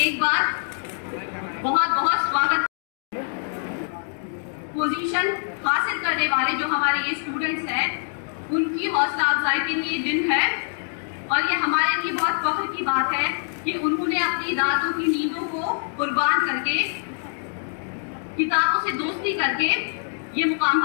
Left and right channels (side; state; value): right; silent; 62 dB below the other